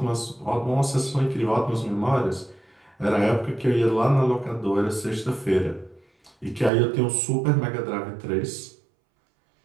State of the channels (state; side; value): drops out; left; at 6.7 s